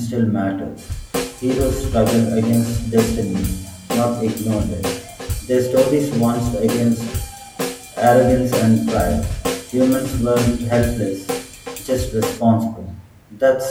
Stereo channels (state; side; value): identical; both; correlation 1.00